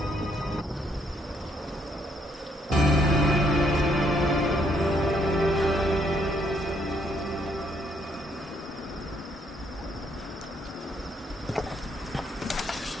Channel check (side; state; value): both; normal; correlation 0.70